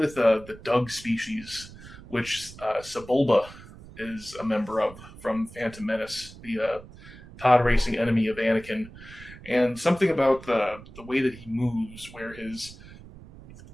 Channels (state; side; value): noise; right; rumble, 18 dB below the sound